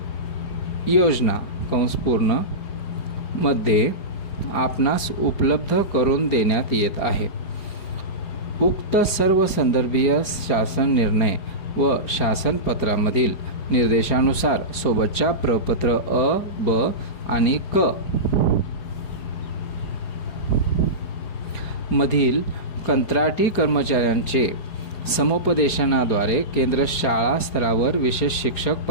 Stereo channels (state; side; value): late; right; 4.8 ms